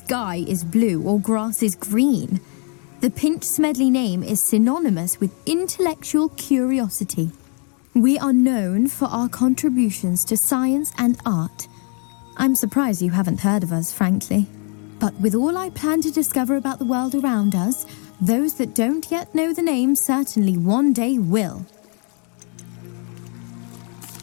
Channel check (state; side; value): quieter; right; 38.5 dB